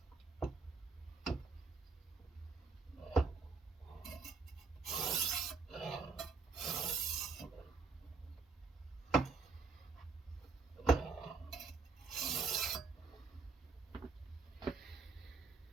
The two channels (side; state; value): left; quieter; 4.6 dB